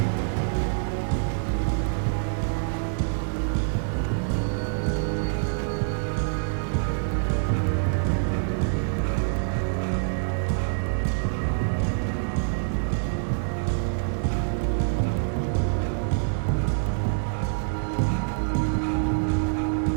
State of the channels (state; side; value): silent; left; digital silence